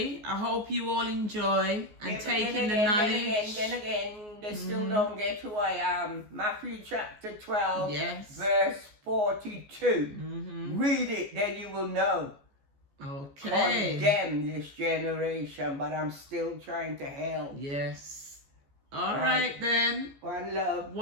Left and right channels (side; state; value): left; late; 14 ms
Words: I hope you all enjoy and Yeah, but take then in the again, knowledge. Then again, they still don't get who I am. Matthew chapter 12, Yes. verse 42. Read it, then you will know. Okay. Condemn this generation, but I'm still trying to help. Yes. All Right. right then. One love.